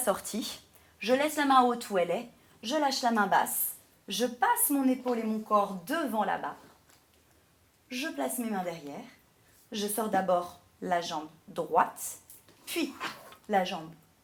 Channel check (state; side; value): identical; both; correlation 1.00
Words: je laisse la main haute où elle est, je lâche la main basse, je passe mon épaule et mon corps devant la barre, je place mes mains derrière, je sors d'abord la jambe droite, puis la jambe